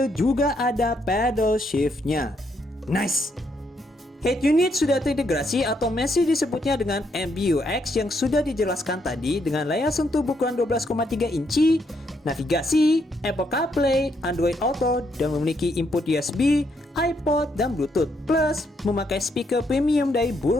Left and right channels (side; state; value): both; normal; correlation 0.75